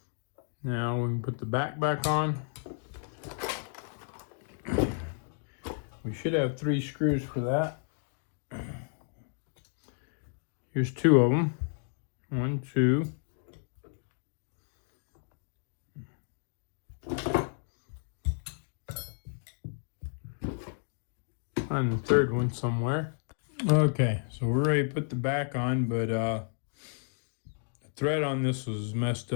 Now we can put the back on. We should have 3 screws for that. Here's 2 of them. 1, 2. Find the 3rd one somewhere. Okay, so we're ready to put the back on, but the thread on this was messed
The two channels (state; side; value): silent; right; digital silence